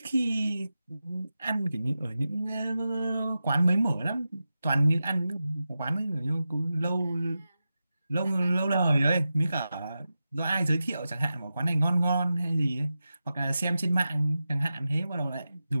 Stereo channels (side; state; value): both; inverted; correlation -0.92